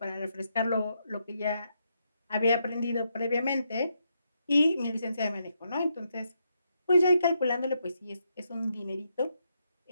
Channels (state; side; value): inverted; both; correlation -0.80